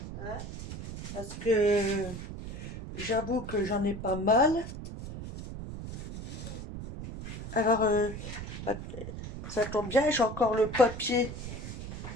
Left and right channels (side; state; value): right; noise; rumble, 9 dB below the sound